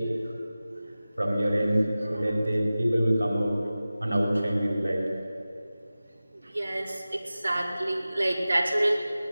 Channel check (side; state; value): both; inverted; correlation -0.96